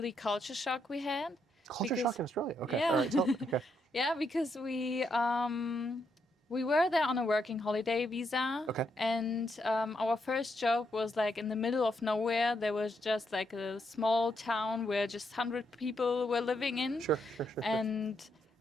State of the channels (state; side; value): normal; both; correlation 0.78